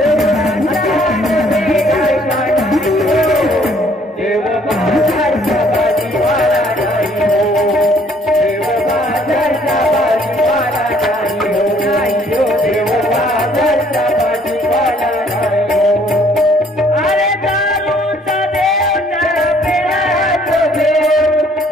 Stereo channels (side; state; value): both; normal; correlation 0.62